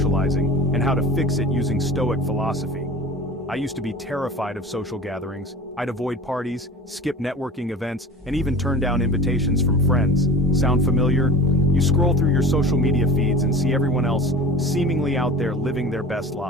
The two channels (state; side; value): normal; both; correlation 0.37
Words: and how to fix it using Stoic philosophy. I used to be terrified of social gatherings. I'd avoid parties, skip networking events, and even turn down invitations from friends. Sound familiar? You scroll through your social media feeds and see everyone else seemingly out there living their best